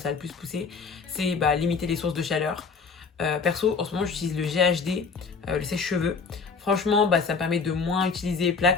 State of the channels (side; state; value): right; quieter; 5.1 dB